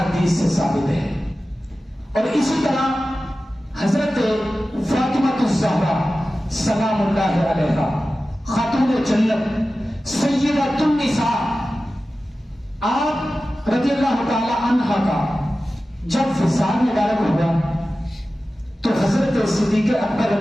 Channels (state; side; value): normal; both; correlation 0.95